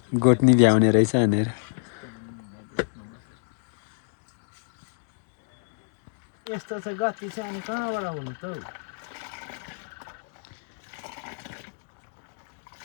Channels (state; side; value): silent; right; digital silence